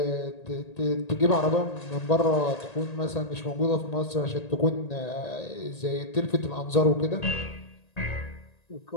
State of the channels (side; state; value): right; late; 1.8 ms